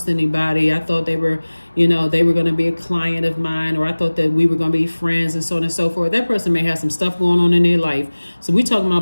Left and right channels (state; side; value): inverted; both; correlation -1.00